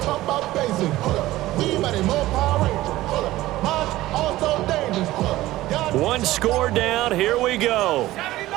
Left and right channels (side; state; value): left; quieter; 16.4 dB